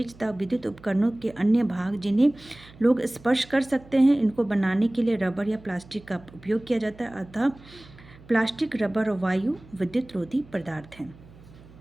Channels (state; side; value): noise; right; hum, 22 dB below the sound